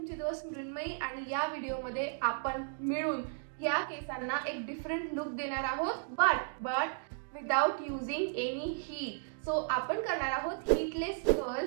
दोस्त मृण्मयी आणि या व्हिडिओमध्ये आपण मिळून या केसांना एक डिफरंट लुक देणार आहोत, but without using any heat. So आपण करणार आहोत हीटलेस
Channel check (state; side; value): silent; left; digital silence